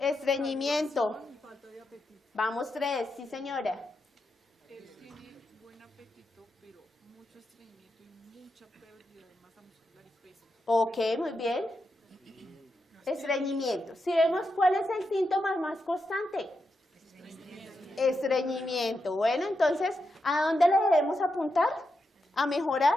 Vamos 3, sí señora. Él tiene buen apetito, pero mucho estreñimiento y mucha pérdida de masa muscular y peso. Ok, muy bien. Estreñimiento. Si vemos cuál es el síntoma más constante. Estreñimiento. Bueno, entonces, ¿a dónde le debemos apuntar? A mejorar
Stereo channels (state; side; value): normal; both; correlation 0.86